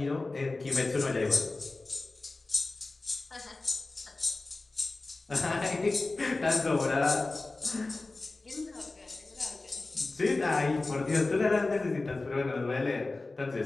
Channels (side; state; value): right; quieter; 3.3 dB